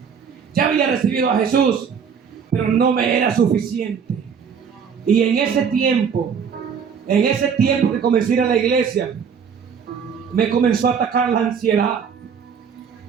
Ya había recibido a Jesús. Pero no me era suficiente. Y en ese tiempo que comencé a ir a la iglesia, me comenzó a atacar la ansiedad.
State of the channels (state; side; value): quieter; left; 6.8 dB